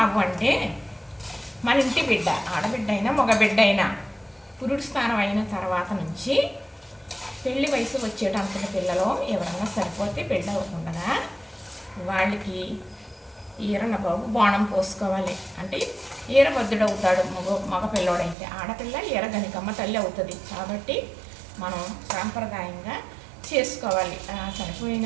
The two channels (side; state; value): left; drops out; at 18.4 s